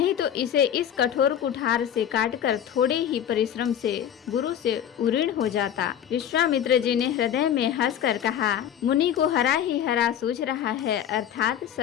तो इसे इस कठोर कुठार से काटकर थोड़े ही परिश्रम से गुरु से उऋण हो जाता। विश्वामित्र जी ने हृदय में हंसकर कहा, मुनि को हरा ही हरा सूझ रहा है, अर्थात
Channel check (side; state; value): right; quieter; 9.7 dB